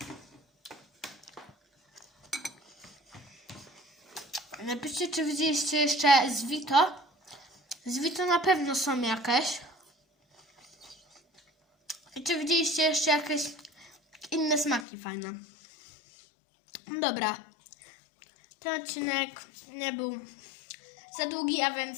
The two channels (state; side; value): drops out; right; at 14.9 s